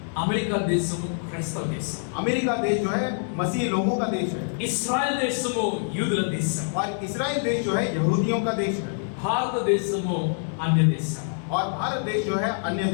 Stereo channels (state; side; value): silent; right; digital silence